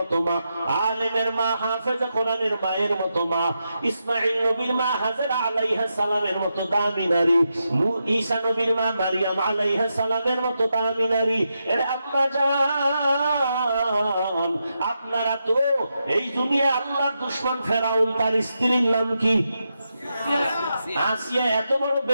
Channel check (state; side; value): inverted; both; correlation -0.86